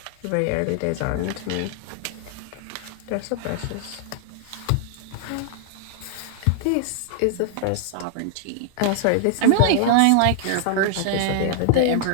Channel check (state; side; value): different; both; correlation -0.01